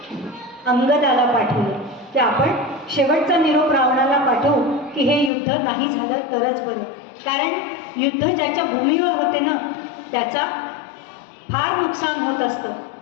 अंगदाला पाठवलं की आपण शेवटचा निरोप रावणाला पाठवू की हे युद्ध नाही झालं तरच बरं. कारण युद्ध ज्याच्या भूमीवर होते ना त्याचा फार नुकसान होत असतं.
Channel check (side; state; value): right; drops out; at 5.3 s